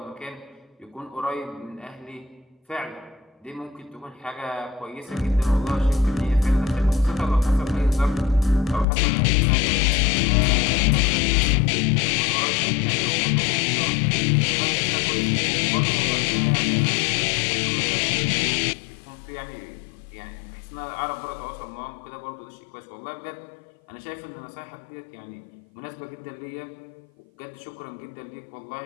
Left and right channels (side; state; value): right; drops out; at 8.8 s